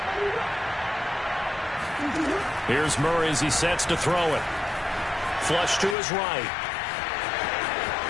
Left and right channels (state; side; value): drops out; right; at 6.0 s